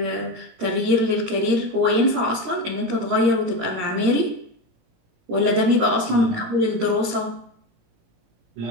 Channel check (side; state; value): left; late; 17 ms